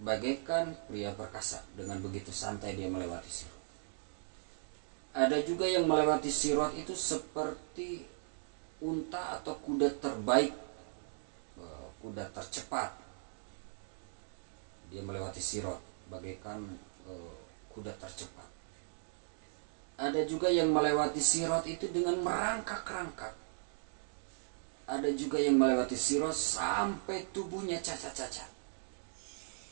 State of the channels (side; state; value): left; silent; digital silence